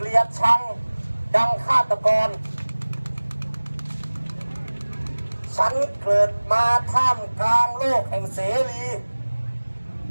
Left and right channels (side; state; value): both; inverted; correlation -1.00